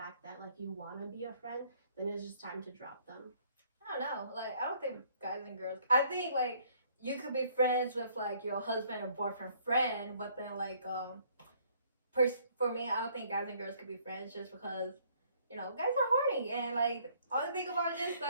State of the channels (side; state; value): both; inverted; correlation -0.63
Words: that like you want to be a friend, then it's just time to drop them. I don't know. Like, I don't think guys and girls. I think like you could be friends with like your husband or boyfriend friend, but then like for me, I don't think guys and girls could be friends just because guys are horny and like all they think about is just like.